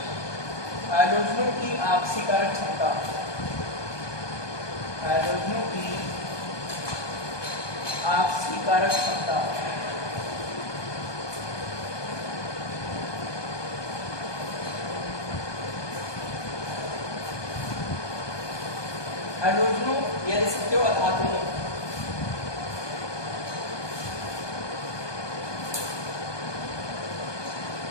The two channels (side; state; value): right; late; 1.2 ms